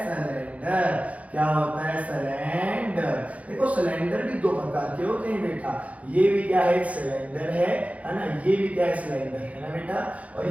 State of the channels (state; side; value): late; left; 0.067 ms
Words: सिलेंडर। क्या होता है? सिलेंडर। देखो सिलेंडर भी दो प्रकार के होते हैं बेटा, ये भी क्या है? एक सिलेंडर है ना, ये भी क्या है? सिलेंडर है ना बेटा, और